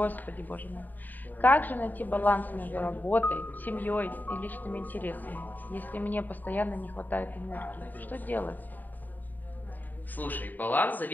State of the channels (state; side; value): late; right; 0.087 ms